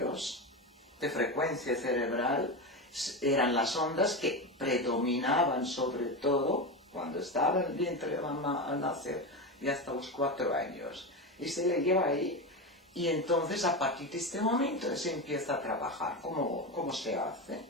de frecuencia cerebral, eran las ondas que predominaban sobre todo cuando estaba en el vientre de mamá al nacer y hasta los 4 años. Y se le lleva ahí, y entonces a partir de este momento se empieza a trabajar. ¿Cómo se hace?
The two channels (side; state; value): both; normal; correlation 0.18